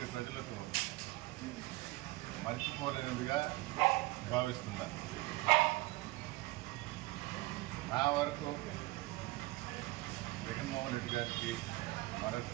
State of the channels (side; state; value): left; quieter; 20.8 dB